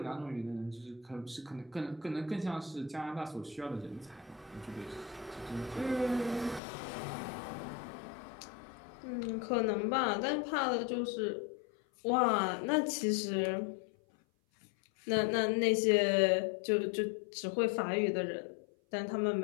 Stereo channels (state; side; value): drops out; right; at 6.6 s